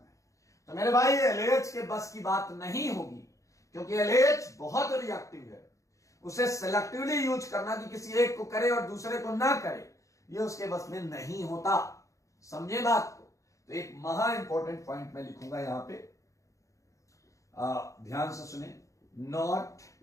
तो मेरे भाई LAH के बस की बात नहीं होगी, क्योंकि LAH बहुत रिएक्टिव है। उसे सेलेक्टिवली यूज करना कि किसी एक को करे और दूसरे को ना करे, ये उसके बस में नहीं होता। समझे बात को? तो एक महा इंपॉर्टेंट पॉइंट मैं लिखूंगा यहां पे, ध्यान से सुने। नॉट,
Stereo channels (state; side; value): late; right; 0.15 ms